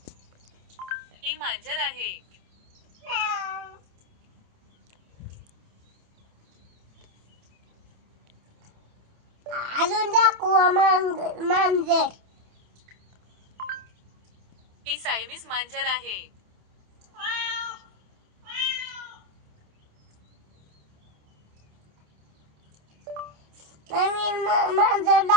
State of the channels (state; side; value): late; left; 27 ms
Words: हे मांजर आहे. अजून दाखवा मांजर. हे सायमीस मांजर आहे. नवीन मांजर